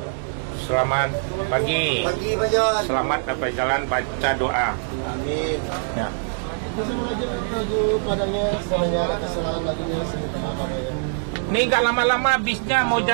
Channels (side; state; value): left; silent; 59 dB below the other